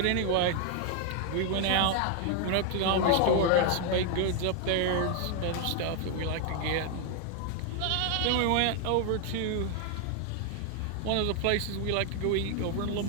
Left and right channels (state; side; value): different; both; correlation 0.01